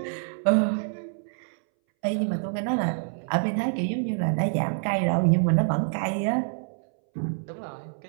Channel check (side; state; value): left; silent; 60 dB below the other